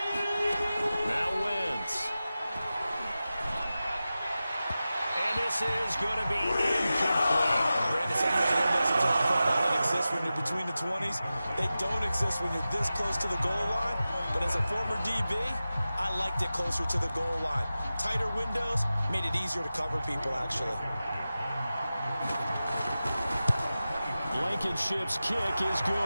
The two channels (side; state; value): both; inverted; correlation -0.94